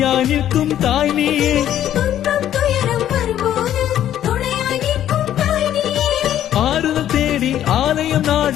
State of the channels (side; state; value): right; quieter; 11.4 dB